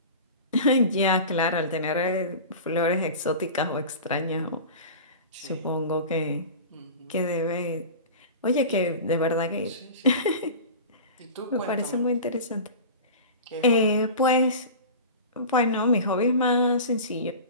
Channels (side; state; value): both; inverted; correlation -0.34